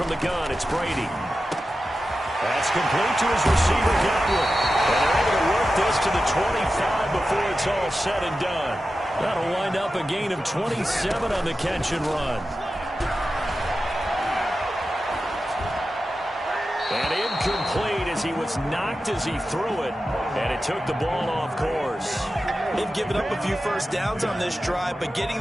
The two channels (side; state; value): both; normal; correlation 0.92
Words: the gun, it's Brady. That's complete to his receiver, Godwin. And they're able to work this to the 25 before it's all said and done. That'll wind up a gain of 27 on the catch and run. And incomplete as he was knocked as he threw it. And it took the ball off course. They've given up a few first downs on this drive, but getting